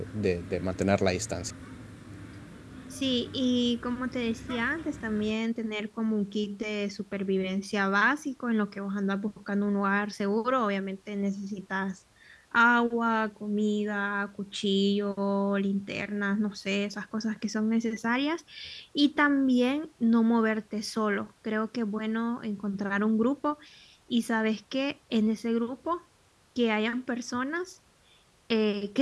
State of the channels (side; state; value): both; identical; correlation 1.00